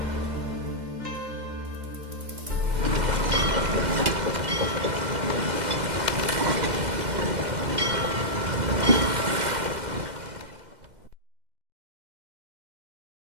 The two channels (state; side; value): late; left; 2.1 ms